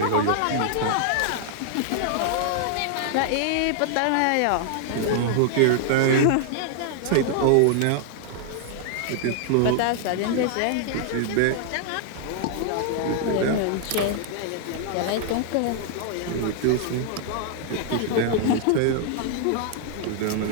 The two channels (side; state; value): both; different; correlation 0.00